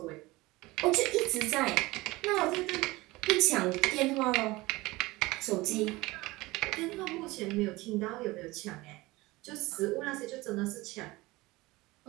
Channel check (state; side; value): quieter; left; 20.8 dB